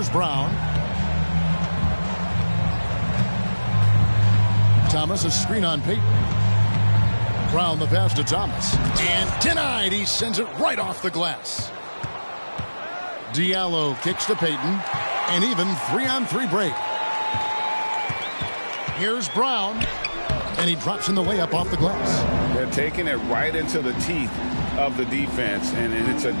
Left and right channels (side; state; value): both; inverted; correlation -1.00